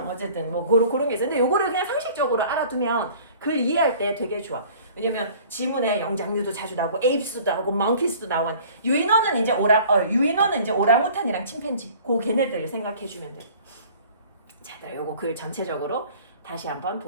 어쨌든 뭐 그런 게 있어. 근데 요거를 그냥 상식적으로 알아두면 글 이해할 때 되게 좋아. 왜냐면 지문에 영장류도 자주 나오고 에이프스도 나오고 멍키스도 나오고 유인원은 이제 오랑우탄이랑 침팬지 그 걔네들 생각해 주면 돼. 자, 요거 글 전체적으로 다시 한번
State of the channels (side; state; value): both; inverted; correlation -0.49